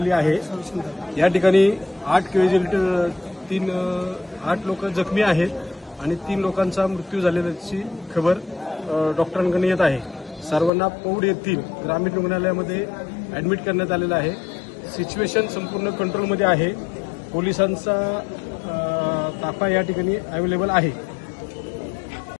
आहे। या ठिकाणी 8 कॅज्युअल्टी, 8 लोक जखमी आहेत आणि 3 लोकांचा मृत्यू झाल्याची खबर डॉक्टरांकडून येत आहे। सर्वांना पौंड येथील ग्रामीण रुग्णालयामध्ये ऍडमिट करण्यात आलेलं आहे। सिच्युएशन संपूर्ण कंट्रोलमध्ये आहे। पोलिसांचा ताफा या ठिकाणी अवेलेबल आहे।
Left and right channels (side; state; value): right; drops out; at 10.7 s